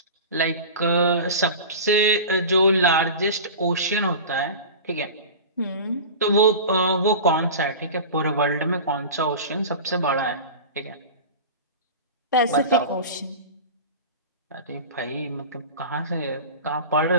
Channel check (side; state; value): both; inverted; correlation -0.32